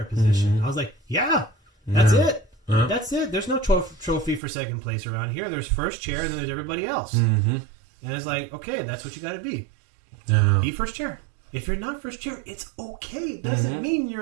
position. I was like, that's it. That's it. There's no trophy for second place around here. There's first chair, and then there's everybody else. And it's like, okay, that's what you got to be. Be first chair. If you're not first chair, it's okay. It doesn't mean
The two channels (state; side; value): drops out; left; at 4.4 s